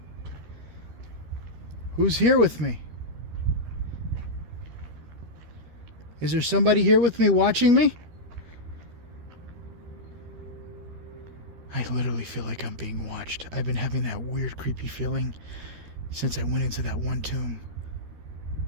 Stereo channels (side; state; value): left; late; 13 ms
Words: Who's here with me? Is there somebody here with me watching me? I literally feel like I'm being watched. I've been having that weird, creepy feeling since I went into that one tomb.